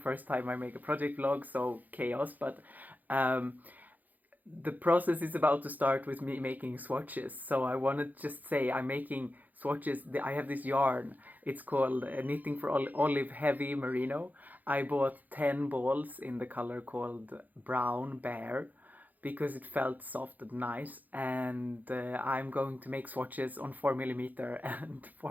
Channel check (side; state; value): left; late; 0.082 ms